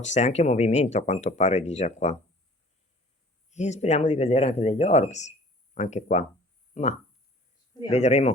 anche movimento a quanto pare di già qua. E speriamo di vedere anche degli orbs, anche qua, ma Speriamo.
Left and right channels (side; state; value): both; normal; correlation 0.49